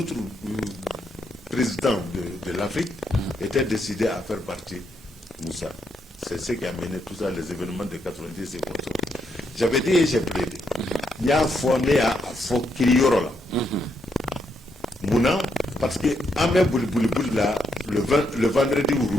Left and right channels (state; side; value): normal; both; correlation 0.78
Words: présidents de l'Afrique, était décidée à faire partie Moussa. C'est ce qui a mené tout ça, les événements de 90 et comme ça. J'avais dit et j'ai plaidé. Il y a un fourné à Fokirioro là. Mouna, parce que Amé Bouli là, le vendredi